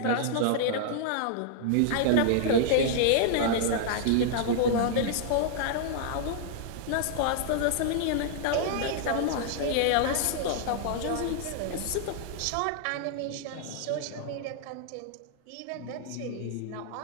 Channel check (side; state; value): both; different; correlation -0.01